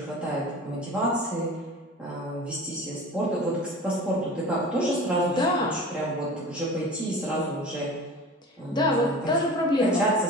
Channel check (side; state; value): both; normal; correlation 0.37